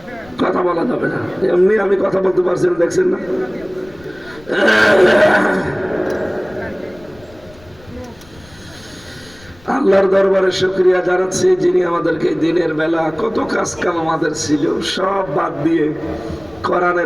কথা বলা যাবে না, এমনি আমি কথা বলতে পারছি না, দেখছেন না? আল্লাহর দরবারে শুকরিয়া জানাচ্ছি, যিনি আমাদেরকে দিনের বেলা কত কাজ কাম আমাদের ছিল সব বাদ দিয়ে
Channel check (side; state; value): left; noise; rumble, 24 dB below the sound